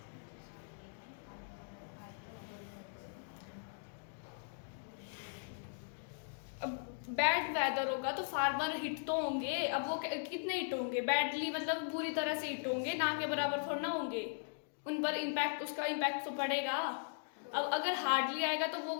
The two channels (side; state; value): right; silent; digital silence